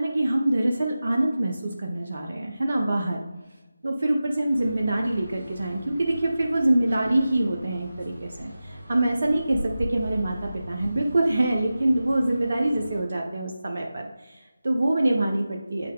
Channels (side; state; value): both; inverted; correlation -0.94